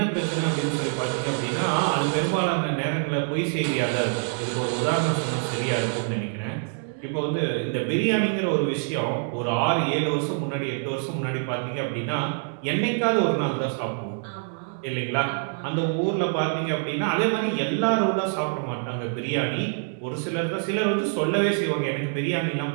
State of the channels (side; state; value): left; silent; 58 dB below the other